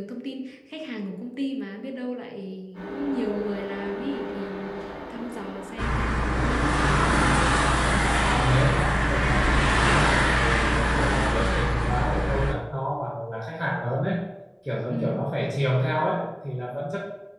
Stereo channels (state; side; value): identical; both; correlation 1.00